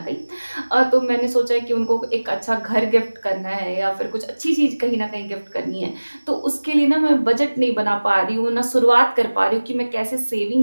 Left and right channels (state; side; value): inverted; both; correlation -1.00